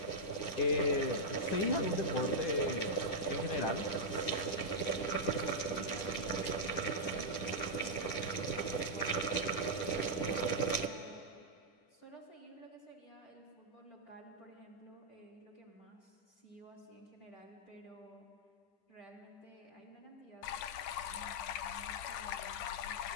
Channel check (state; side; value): late; right; 10 ms